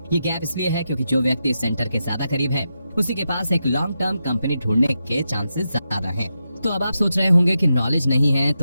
ये गैप इसलिए है क्योंकि जो व्यक्ति सेंटर के ज्यादा करीब है उसी के पास एक लॉन्ग टर्म कंपनी ढूंढने के चांसेस ज्यादा हैं। तो अब आप सोच रहे होंगे कि नॉलेज नहीं है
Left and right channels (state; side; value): inverted; both; correlation -0.87